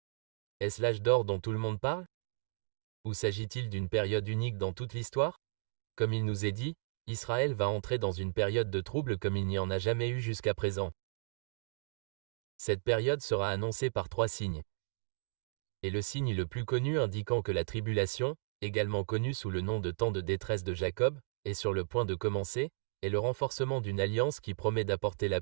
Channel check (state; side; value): silent; left; digital silence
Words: Est-ce l'âge d'or dont tout le monde parle? Ou s'agit-il d'une période unique dans toute l'histoire? Comme il nous est dit, Israël va entrer dans une période de trouble comme il n'y en a jamais eu jusqu'à présent. Cette période sera annoncée par 3 signes. Et le signe le plus connu indiquant que la tribulation, également connue sous le nom de temps de détresse de Jacob, est sur le point de commencer, est le renforcement d'une alliance qui promet d'apporter la